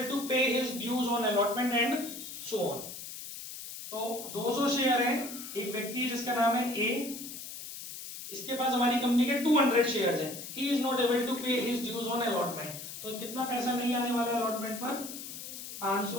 to pay his dues on allotment and so on. तो 200 शेयर हैं, एक व्यक्ति है जिसका नाम है ए, इसके पास हमारी कंपनी के 200 शेयर्स हैं, he is not able to pay his dues on allotment, तो कितना पैसा नहीं आने वाला है अलॉटमेंट पर,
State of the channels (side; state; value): left; noise; hiss, 10 dB below the sound